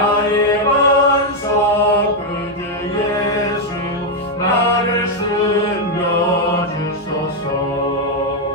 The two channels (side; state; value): both; normal; correlation 0.01